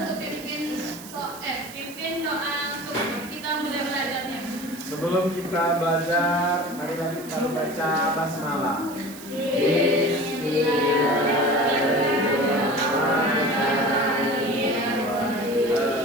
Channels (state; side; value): noise; right; hiss, 16 dB below the sound